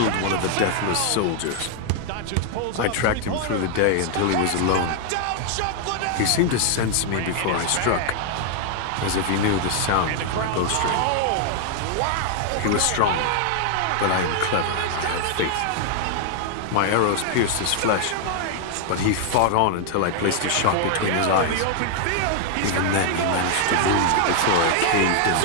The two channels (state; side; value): different; both; correlation 0.00